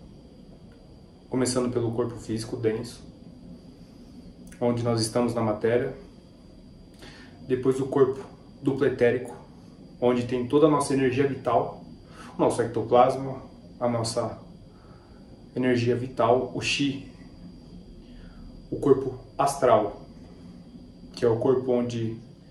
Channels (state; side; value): identical; both; correlation 1.00